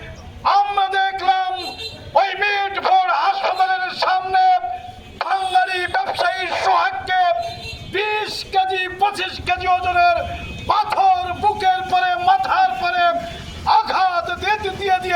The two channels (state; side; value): identical; both; correlation 1.00